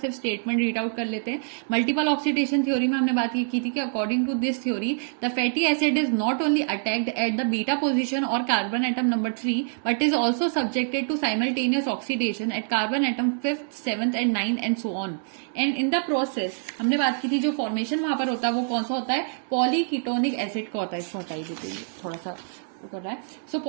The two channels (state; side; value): silent; left; digital silence